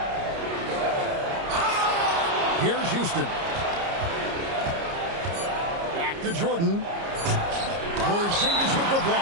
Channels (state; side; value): late; left; 30 ms